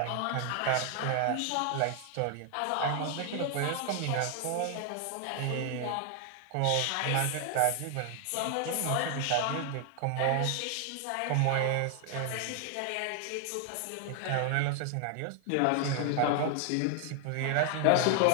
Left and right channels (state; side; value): different; both; correlation 0.00